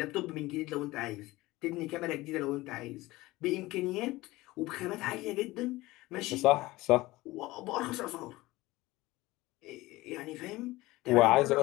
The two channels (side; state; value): right; quieter; 19.3 dB